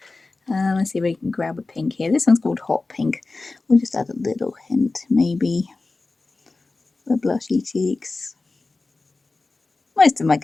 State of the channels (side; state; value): right; quieter; 3.5 dB